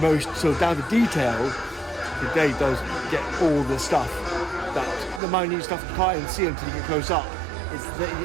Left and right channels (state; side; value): drops out; left; at 5.2 s